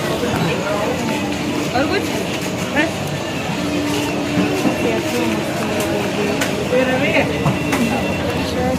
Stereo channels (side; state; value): both; identical; correlation 1.00